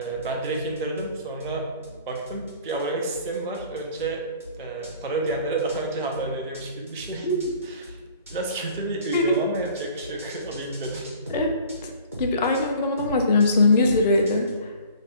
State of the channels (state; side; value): inverted; both; correlation -0.49